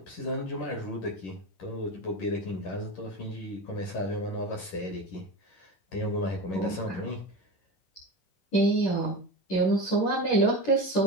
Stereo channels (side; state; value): right; late; 11 ms